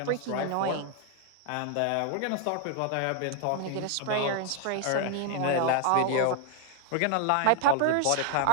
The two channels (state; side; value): different; both; correlation 0.00